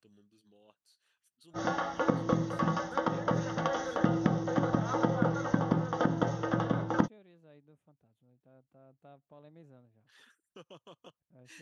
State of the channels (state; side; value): identical; both; correlation 1.00